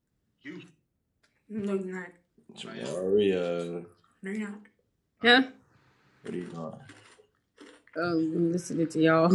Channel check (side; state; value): both; identical; correlation 1.00